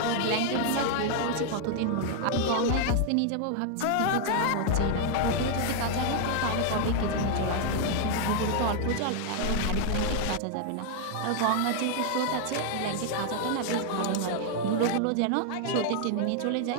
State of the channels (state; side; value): different; both; correlation 0.00